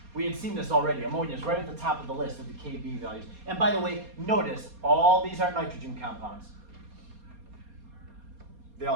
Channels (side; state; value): left; late; 4.2 ms